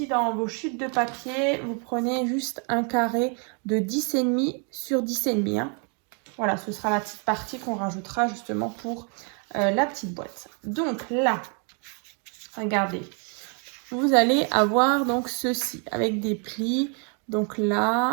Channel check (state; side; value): quieter; left; 38.1 dB